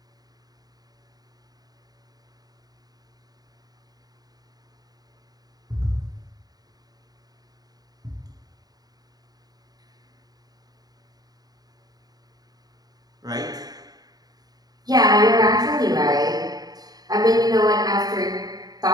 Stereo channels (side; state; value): left; late; 0.19 ms